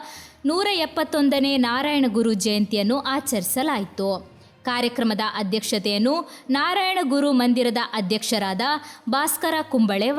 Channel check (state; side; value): identical; both; correlation 1.00